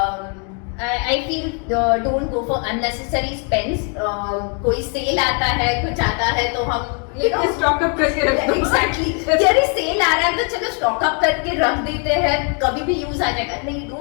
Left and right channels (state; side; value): quieter; right; 38.2 dB